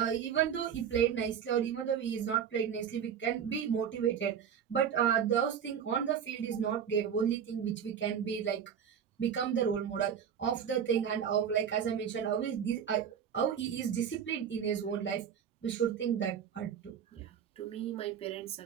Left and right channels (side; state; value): left; quieter; 8.1 dB